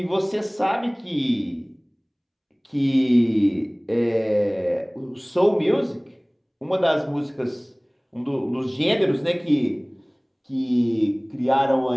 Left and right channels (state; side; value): identical; both; correlation 1.00